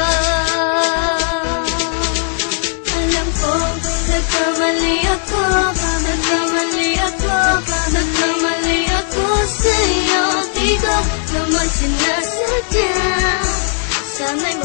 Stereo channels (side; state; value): right; silent; 60 dB below the other